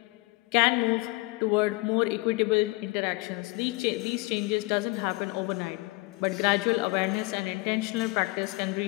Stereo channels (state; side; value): quieter; right; 23.8 dB